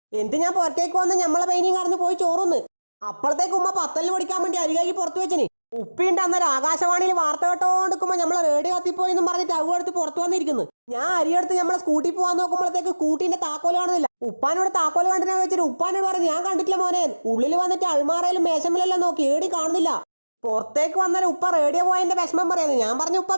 എന്നിട്ട് ഞാൻ പുറത്തേക്ക് വന്ന് നമ്മളെ പെയിനും കറന്ന് പോയി ചോറുന്ന്. അപ്പോഴത്തേക്ക് ഉമ്മ പത്തലിന് പഠിക്കാൻ വേണ്ടി അരികായി പുറത്ത് വെച്ചിന്. ഉപ്പിണ്ട് അന്നേരം ആകാശവാണിയിൽ വാർത്ത കേട്ടോണ്ടിരിക്കുമ്പോ നമ്മളെ റേഡിയോ കത്തിപ്പോയി എന്നും പറഞ്ഞിട്ട് അവ എടുത്ത് പുറത്തു വന്നിരിക്കുന്നു. ഞാൻ അരിയെടുത്ത് നമ്മളെ സ്കൂട്ടി പോകാൻ നോക്കുമ്പോഴത്തേക്ക് സ്കൂട്ടിന്റെ താക്കോല് കാണുന്നില്ല. ഉപ്പാനോട് താക്കോല് കണ്ടിനാ വെച്ചിട്ട് ഉപ്പാനോട് പറഞ്ഞു, ഞാൻ കണ്ടിട്ടില്ല മോനെ. ഉള്ളിൽ വന്നിട്ട് അൾമാറയിലും മേശമലെല്ലാം നോക്കി, ഏടി കാണുന്നില്ല. പുറത്തേക്ക് വന്നാലും ഉപ്പ റേഡിയോ പോയതിന്റെ വിഷമം പറയുന്നത്. ഞാൻ പറഞ്ഞു, ഉപ്പ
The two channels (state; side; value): inverted; both; correlation -1.00